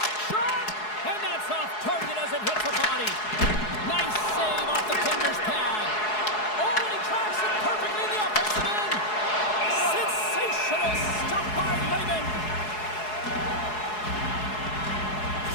Shot! And that's off target as it hits the body. Nice save off the tender's pad. Oh, and he tracks it perfectly in the offensive end. Sensational stuff by Lehman.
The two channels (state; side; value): late; right; 4.7 ms